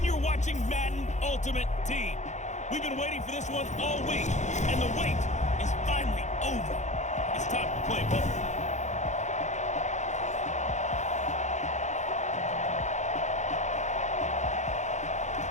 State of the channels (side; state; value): right; late; 0.34 ms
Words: you're watching Madden Ultimate Team. We've been waiting for this one all week, and the wait is finally over. It's time to play ball.